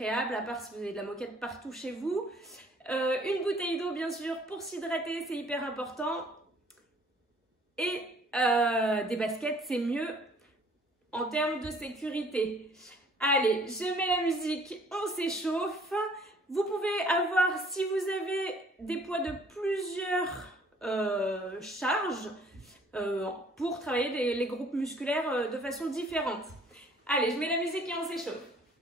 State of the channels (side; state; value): both; normal; correlation 0.57